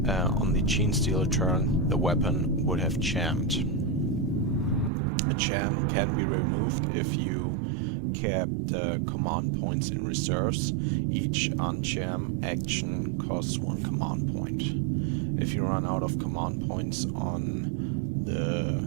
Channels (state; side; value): drops out; left; at 4.9 s